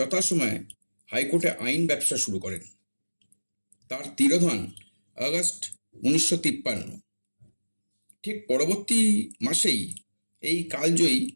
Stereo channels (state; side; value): inverted; both; correlation -1.00